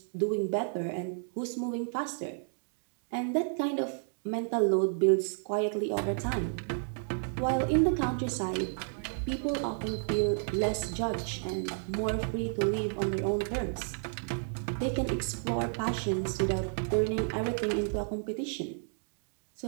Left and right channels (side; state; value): left; silent; digital silence